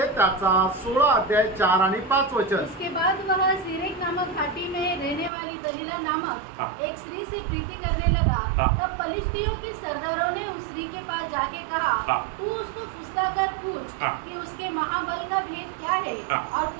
त्याचा 16 अध्याय 4 आणि 5 वचन। उसके बाद वह सीरेक नामक घाटी में रहने वाली दलीला नामक एक स्त्री से प्रीति करने लगा। तब फलिस्तियों के सरदारों ने उस स्त्री के पास जाके कहा, तू उसको फुसलाकर पूछ कि उसके महाबल का भेद क्या है और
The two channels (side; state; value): left; drops out; at 5.3 s